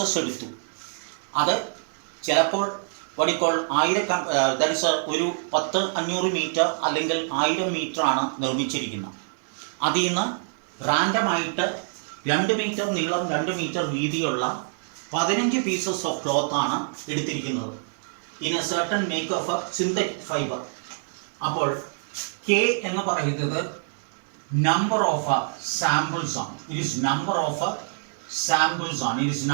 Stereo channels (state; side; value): silent; left; digital silence